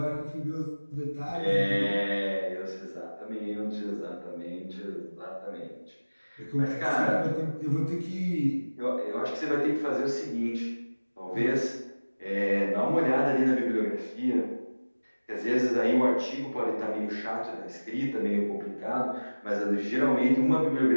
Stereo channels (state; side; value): inverted; both; correlation -1.00